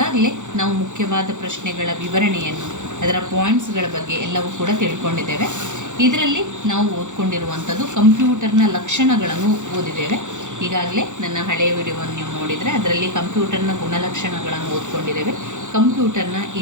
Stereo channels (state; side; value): late; left; 0.85 ms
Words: ನಾವು ಮುಖ್ಯವಾದ ಪ್ರಶ್ನೆಗಳ ವಿವರಣೆಯನ್ನು, ಅದರ ಪಾಯಿಂಟ್ಸ್ಗಳ ಬಗ್ಗೆ ಎಲ್ಲವೂ ಕೂಡ ತಿಳ್ಕೊಂಡಿದ್ದೇವೆ. ಇದರಲ್ಲಿ ನಾವು ಓದ್ಕೊಂಡಿರುವಂಥದ್ದು ಕಂಪ್ಯೂಟರ್ನ ಲಕ್ಷಣಗಳನ್ನು ಓದಿದ್ದೇವೆ. ಈಗಾಗಲೇ ನನ್ನ ಹಳೆಯ ವಿಡಿಯೋವನ್ನು ನೀವು ನೋಡಿದರೆ ಅದರಲ್ಲಿ ಕಂಪ್ಯೂಟರ್ನ ಗುಣಲಕ್ಷಣಗಳನ್ನು ಓದ್ಕೊಂಡಿದ್ದೇವೆ. ಕಂಪ್ಯೂಟರ್ನ